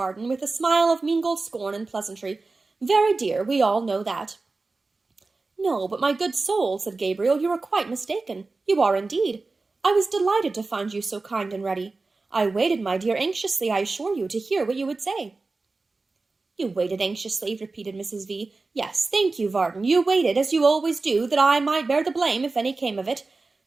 with a smile of mingled scorn and pleasantry. "Very dear, we all know that." "No, but my good soul," said Gabriel, "you are quite mistaken. You are indeed. I was delighted to find you so kind and ready. I waited, my dear, anxiously, I assure you, to hear what you would say." "You waited anxiously," repeated Mrs. V. "Yes, thank you, Varden. You waited, as you always do, that I might bear the blame if any came of it.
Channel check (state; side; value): quieter; left; 3.7 dB